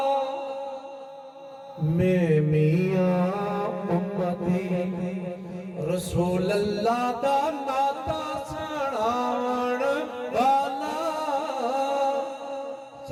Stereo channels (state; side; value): identical; both; correlation 1.00